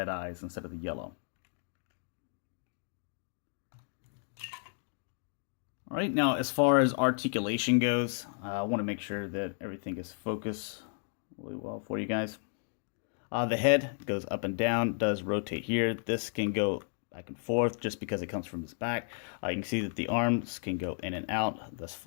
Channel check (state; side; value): silent; right; digital silence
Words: eyes instead of the yellow. All right, now as far as articulation goes, I want to make sure that everything is focused really well for you guys. The head goes up and down, does rotate here. This can go back and forth just because it comes from his back. You can see that the arms can go in and out thus